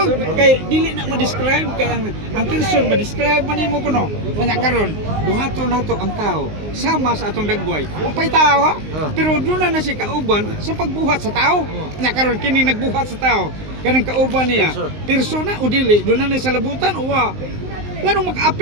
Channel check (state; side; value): late; left; 19 ms